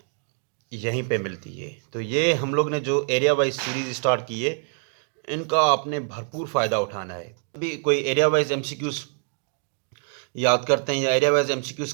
यहीं पे मिलती है। तो ये हम लोग ने जो एरिया वाइज सीरीज़ स्टार्ट की है इनका आपने भरपूर फ़ायदा उठाना है। अभी कोई एरिया वाइज MCQs याद करते हैं या एरिया वाइज MCQs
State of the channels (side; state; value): left; silent; 60 dB below the other